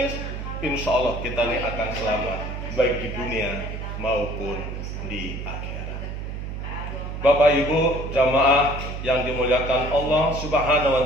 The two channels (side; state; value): right; noise; hum, 6 dB below the sound